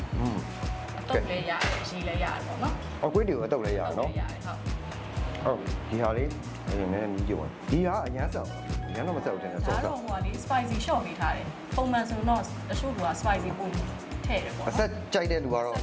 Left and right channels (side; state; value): both; identical; correlation 1.00